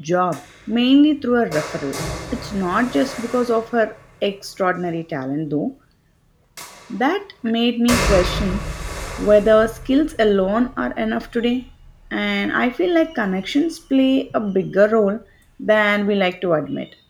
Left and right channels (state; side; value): identical; both; correlation 1.00